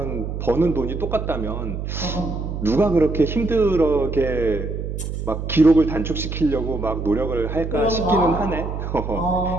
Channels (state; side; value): noise; right; hum, 5 dB below the sound